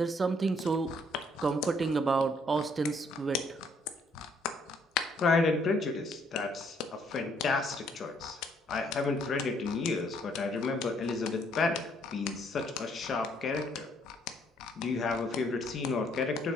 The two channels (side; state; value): both; normal; correlation 0.67